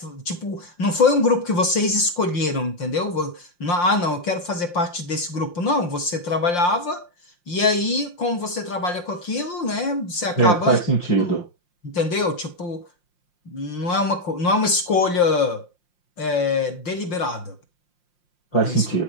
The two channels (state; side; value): late; right; 5.7 ms